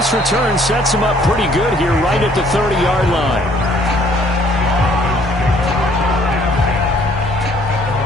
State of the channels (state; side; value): normal; both; correlation 0.61